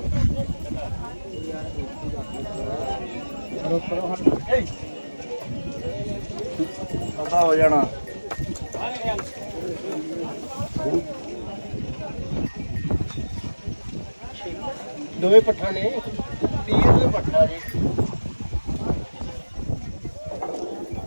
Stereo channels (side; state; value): both; inverted; correlation -1.00